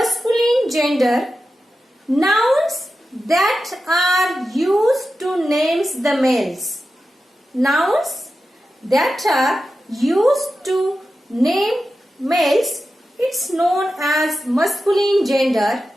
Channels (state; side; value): normal; both; correlation 0.92